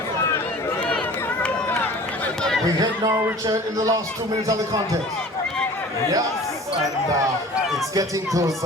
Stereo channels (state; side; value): normal; both; correlation 0.44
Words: We head now, Richard, in the last 2 minutes of the contest. Yes, and it's getting closer,